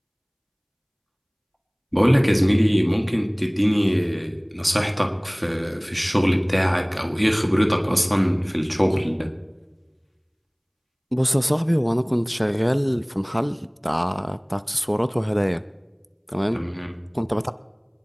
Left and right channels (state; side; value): identical; both; correlation 1.00